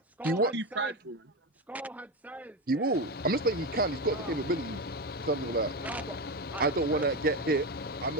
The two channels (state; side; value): normal; both; correlation 0.16